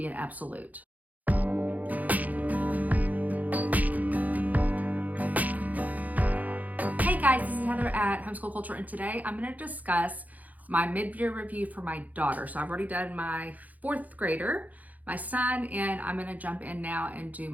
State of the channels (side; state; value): left; late; 0.078 ms